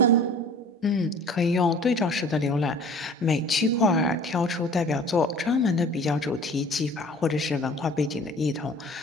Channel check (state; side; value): normal; both; correlation 0.46